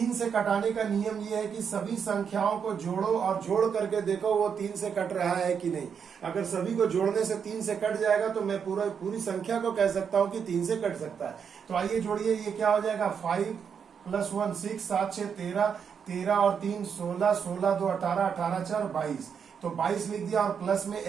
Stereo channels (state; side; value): quieter; left; 7.0 dB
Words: से कटाने का नियम ये है कि सभी संख्याओं को जोड़ो और जोड़ करके देखो वो 3 से कट रहा है कि नहीं। अगर सभी को जोड़ने से 3 से कट जाएगा तो मैं पूरी संख्या को कह सकता हूं कि 3 से कट सकता है। तो आइए जोड़िए, ये क्या हो जाएगा 5 + 1 6 7 6 13 13 और 3 16 16 2 18 18 4 22, तो 22 लिख दिया और प्लस में